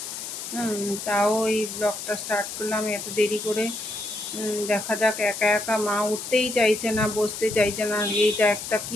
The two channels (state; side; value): noise; left; hiss, 8 dB below the sound